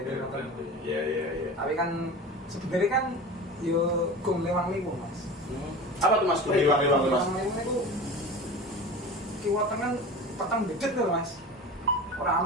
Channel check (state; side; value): normal; both; correlation 0.33